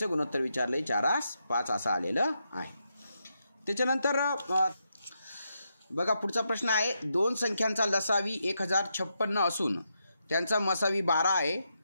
गुणोत्तर विचारलंय 4/5 असं आलेलं आहे. त्याच्यानंतर बघा पुढचा प्रश्न आहे. 2 संख्यांचा लसावी 1056 असून त्यांचा मसावी 12 आहे.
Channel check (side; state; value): both; inverted; correlation -0.83